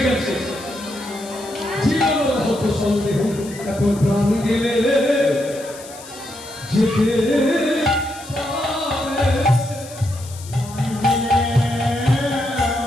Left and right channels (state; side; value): noise; left; hiss, 17 dB below the sound